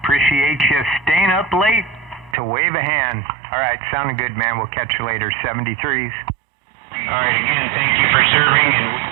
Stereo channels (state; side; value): drops out; left; at 2.4 s